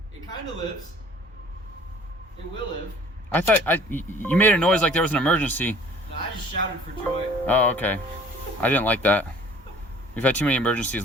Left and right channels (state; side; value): normal; both; correlation 0.51